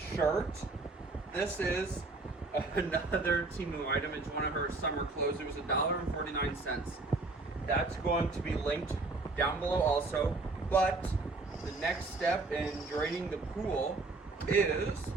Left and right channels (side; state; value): left; quieter; 3.4 dB